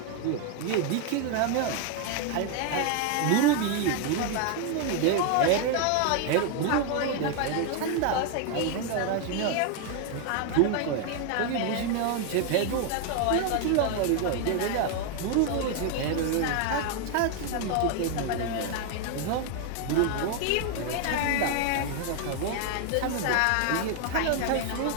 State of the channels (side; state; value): both; different; correlation 0.01